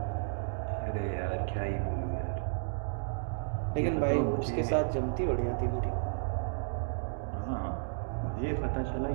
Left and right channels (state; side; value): silent; left; digital silence